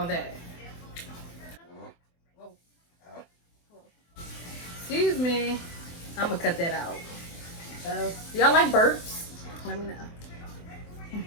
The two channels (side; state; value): right; late; 24 ms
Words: that? Excuse me. I'm gonna cut that out. Y'all like burps? Let me know.